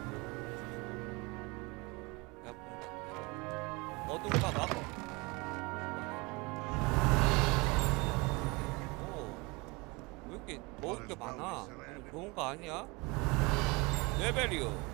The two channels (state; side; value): quieter; left; 26.3 dB